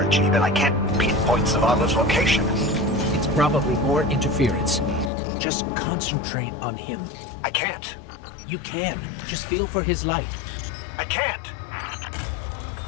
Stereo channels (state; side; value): drops out; right; at 5.1 s